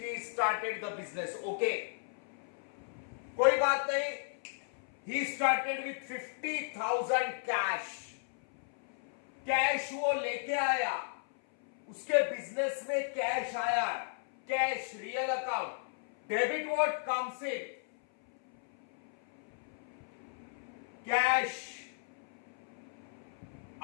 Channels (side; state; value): right; silent; 55 dB below the other